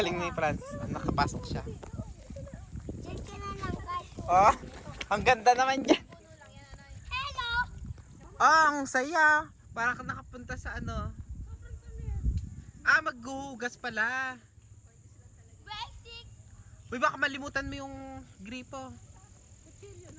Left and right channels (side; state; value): both; identical; correlation 1.00